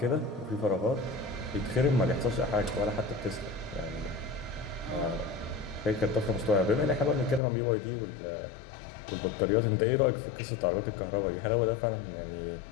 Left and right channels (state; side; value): drops out; right; at 7.4 s